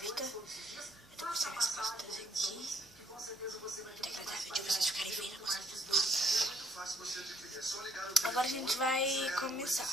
tá? Eu tô mostrando minhas costas aqui. Muito agradável de vocês ficarem vendo. Agora a gente vai começar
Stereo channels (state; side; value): noise; right; hum, 28 dB below the sound